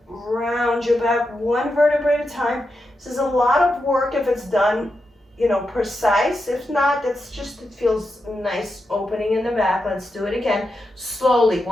round your back one vertebra at a time. This is a lot of work if it's done, precise. If not, it's just, it feels nice opening in the back. Let's do it again. Slowly,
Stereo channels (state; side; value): normal; both; correlation 0.87